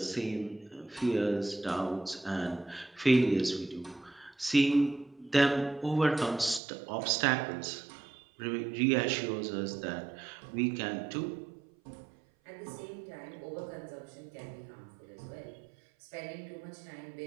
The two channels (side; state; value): left; drops out; at 6.6 s